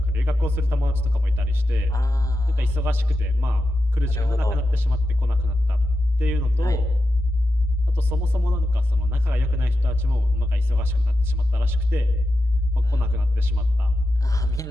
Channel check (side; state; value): both; normal; correlation 0.90